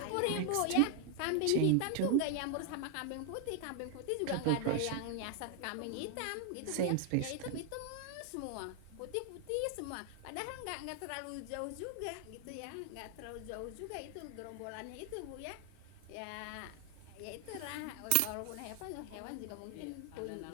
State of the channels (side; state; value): both; different; correlation 0.00